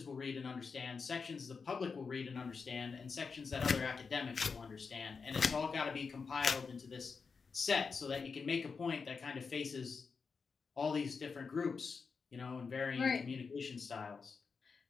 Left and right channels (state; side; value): quieter; right; 5.2 dB